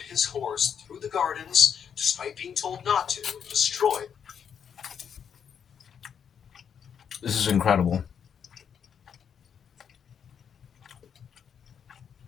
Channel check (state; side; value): quieter; right; 7.7 dB